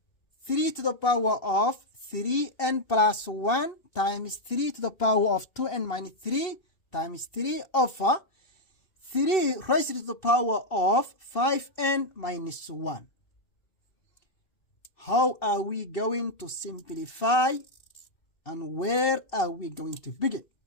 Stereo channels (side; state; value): right; late; 2.7 ms